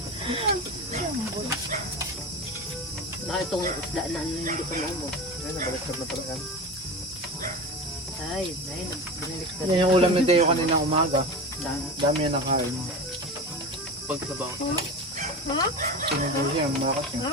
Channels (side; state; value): both; normal; correlation 0.27